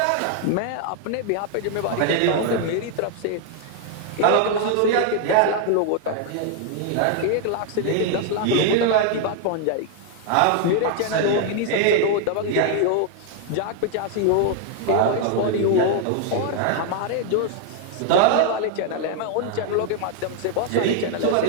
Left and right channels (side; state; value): both; different; correlation 0.00